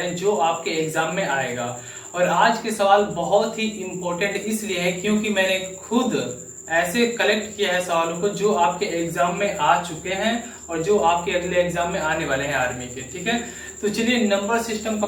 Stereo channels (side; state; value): both; identical; correlation 1.00